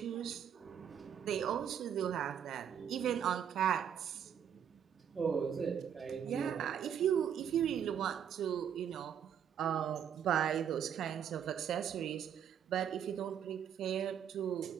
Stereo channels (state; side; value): quieter; left; 8.7 dB